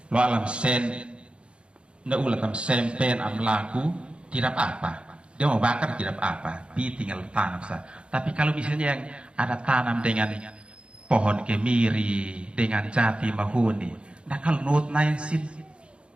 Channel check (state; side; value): late; left; 0.057 ms